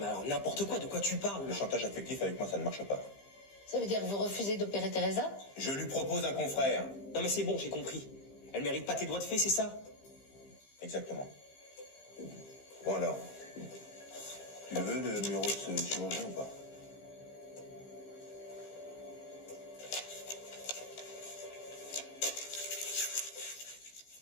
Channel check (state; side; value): late; right; 15 ms